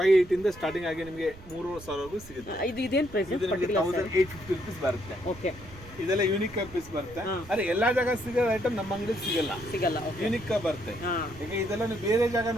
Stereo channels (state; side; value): noise; right; rumble, 18 dB below the sound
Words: ಇಂದ ಸ್ಟಾರ್ಟಿಂಗ್ ಆಗಿ ನಿಮಗೆ 3,000 ವರೆಗೂ ಸಿಗುತ್ತೆ. ಇದು ಇದೇನ್ ಪ್ರೈಸ್? 1850 rupees ಬರುತ್ತೆ. ಓಕೆ, ಇದೆಲ್ಲ ಯೂನಿಕ್ ಪೀಸ್ ಬರುತ್ತೆ. ಅರೆ ಎಲ್ಲಾ ಜಾಗ ಸಿಗೋ ಐಟಮ್ ನಮ್ಮ ಅಂಗಡಿ ಸಿಗಲ್ಲ. ಯೂನಿಕ್ ಬರುತ್ತೆ. ಈಗ ಇದೆಲ್ಲ ನೀವು ಬೇರೆ ಜಾಗ